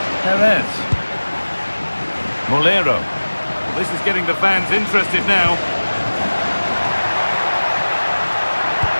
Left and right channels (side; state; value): both; inverted; correlation -1.00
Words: Perez. Molero. This is getting the fans interested now.